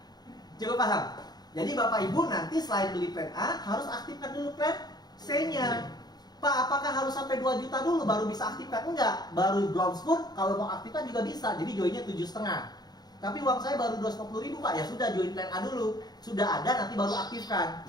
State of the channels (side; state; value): right; late; 0.19 ms